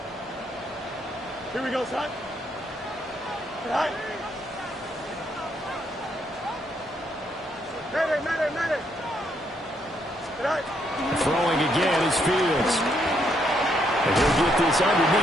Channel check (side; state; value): both; normal; correlation 0.74